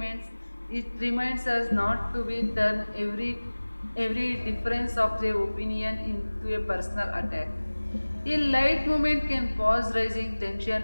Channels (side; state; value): both; inverted; correlation -1.00